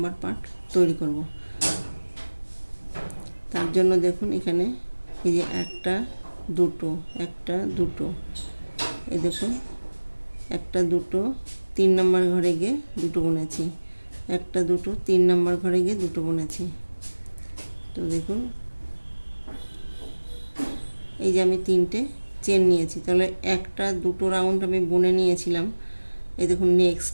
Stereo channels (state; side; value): inverted; both; correlation -1.00